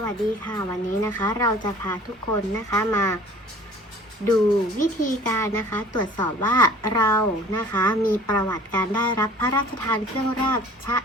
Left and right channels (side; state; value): both; normal; correlation 0.48